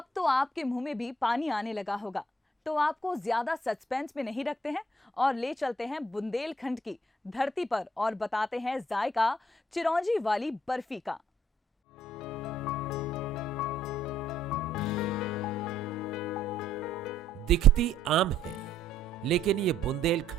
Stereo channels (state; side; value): normal; both; correlation 0.66